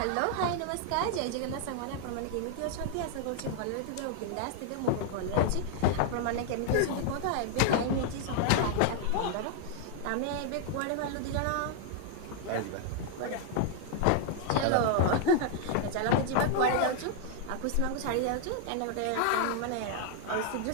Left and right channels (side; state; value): both; different; correlation 0.00